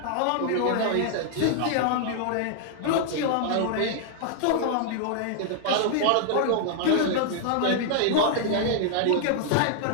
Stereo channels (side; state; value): both; different; correlation -0.01